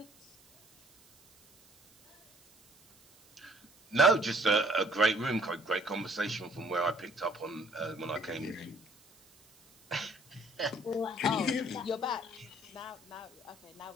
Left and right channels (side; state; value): right; noise; hiss, 28 dB below the sound